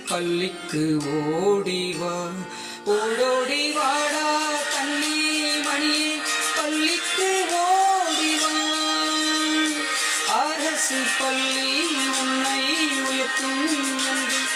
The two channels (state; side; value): identical; both; correlation 1.00